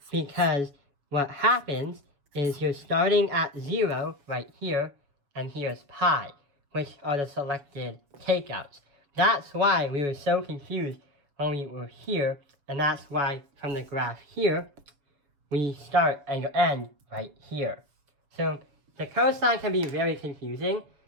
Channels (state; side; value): late; left; 6.9 ms